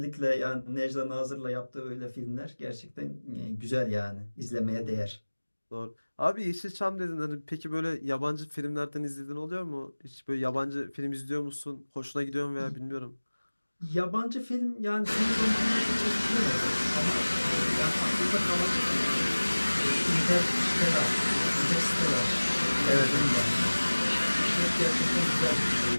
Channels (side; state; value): both; inverted; correlation -1.00